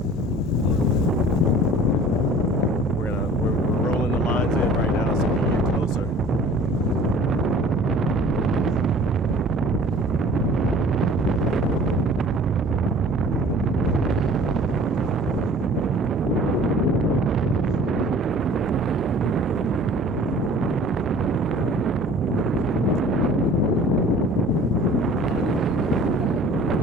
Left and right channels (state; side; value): normal; both; correlation 0.48